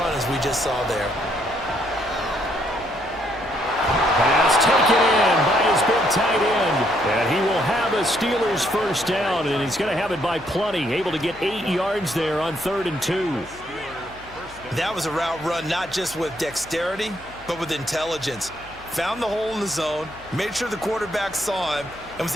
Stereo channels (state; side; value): noise; left; hum, 21 dB below the sound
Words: as we just saw there. Pass taken in by his big tight end. And he will have a Steelers 1st down, and he's going to have it by plenty. Able to get 8 yards there on 3rd and 2. That was a route run not just with dexterity, but with intelligence. Found the hole in the zone, made sure the quarterback saw him, and was